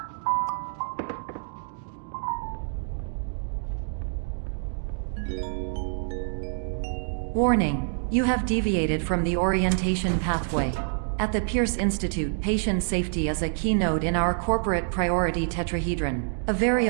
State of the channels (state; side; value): silent; left; digital silence